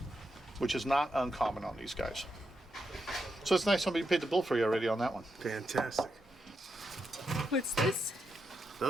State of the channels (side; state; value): both; normal; correlation 0.84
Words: which is not uncommon on these guys. So it's nice somebody paid the bill for you already on that one. Fantastic. What's this?